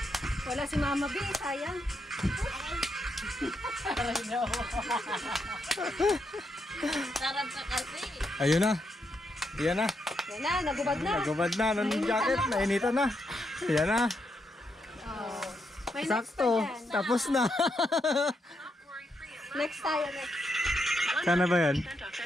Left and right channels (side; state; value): both; normal; correlation 0.80